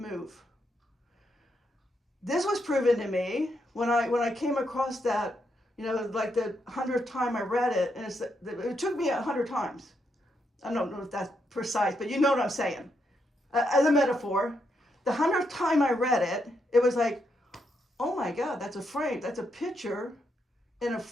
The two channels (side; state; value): both; normal; correlation 0.80